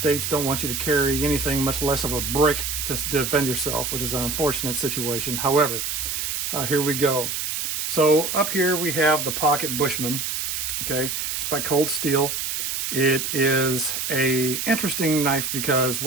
don't want you to carry anything, much less of a brick, to defend yourself, which is an unfortunate situation. However, here we go. So up here we have the Pocket Bushman. Okay, it's by Cold Steel. It is a interesting knife because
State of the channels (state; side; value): noise; right; hiss, 2 dB below the sound